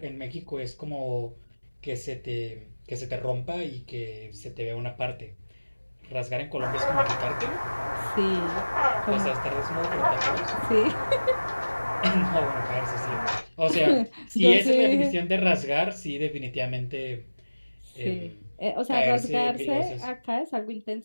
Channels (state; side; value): inverted; both; correlation -1.00